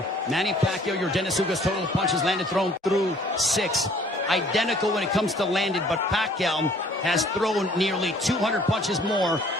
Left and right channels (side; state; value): both; normal; correlation 0.56